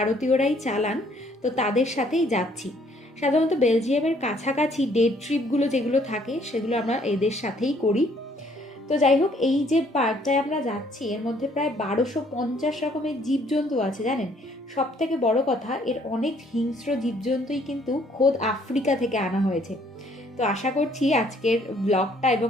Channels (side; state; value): both; normal; correlation 0.64